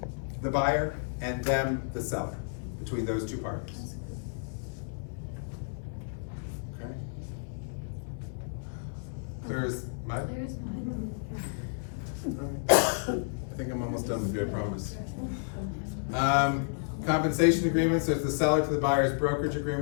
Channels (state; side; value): silent; right; digital silence